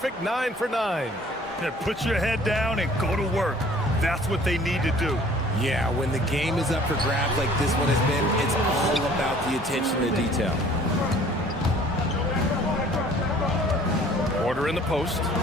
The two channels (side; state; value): both; normal; correlation 0.53